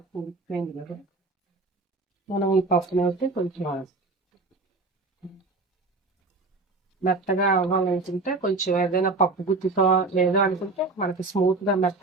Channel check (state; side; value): quieter; left; 3.4 dB